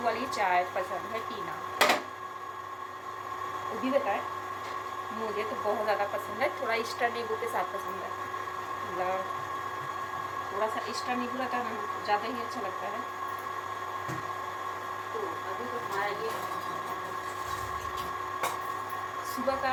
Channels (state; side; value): identical; both; correlation 1.00